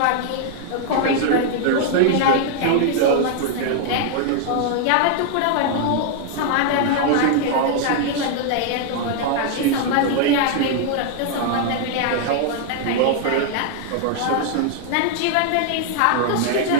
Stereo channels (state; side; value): different; both; correlation 0.00